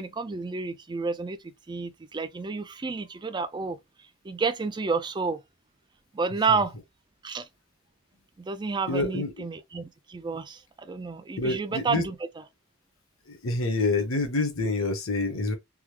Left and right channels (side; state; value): both; normal; correlation 0.18